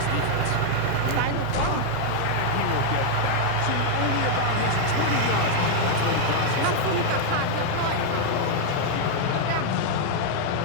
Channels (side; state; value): both; different; correlation 0.00